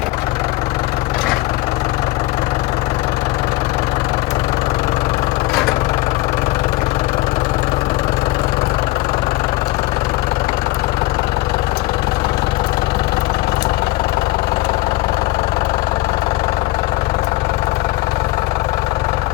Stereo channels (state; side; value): quieter; right; 20.2 dB